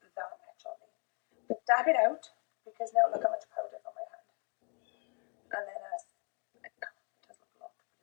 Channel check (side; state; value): right; quieter; 37.1 dB